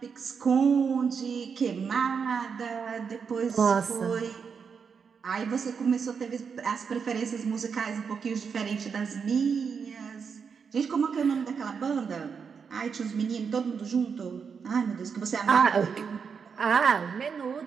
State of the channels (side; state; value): left; quieter; 6.1 dB